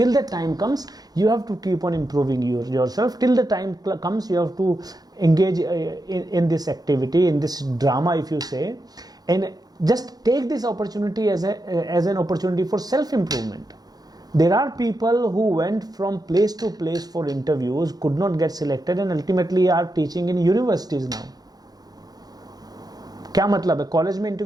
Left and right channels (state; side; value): late; left; 0.19 ms